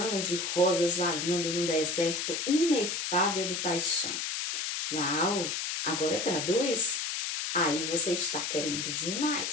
de rosas vagando no deserto inefável de paixão. Uau! Agora traduz? Aí você está querendo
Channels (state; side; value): noise; left; hiss, 2 dB below the sound